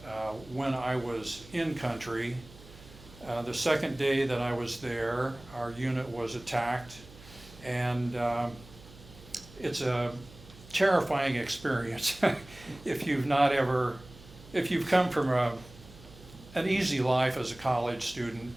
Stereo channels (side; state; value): right; noise; hum, 20 dB below the sound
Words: when I was in country. The second day that I was there, our unit was attacked, and it's a terrifying experience if you've come from an easy life as a college student